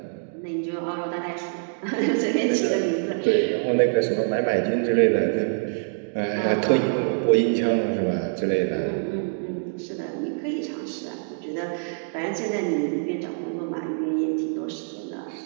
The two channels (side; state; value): left; silent; digital silence